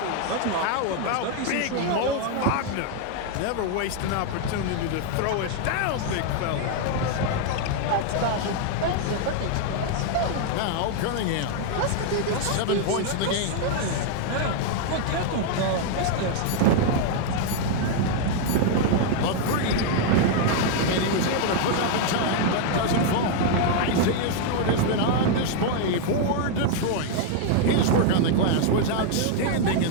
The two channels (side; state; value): both; different; correlation 0.00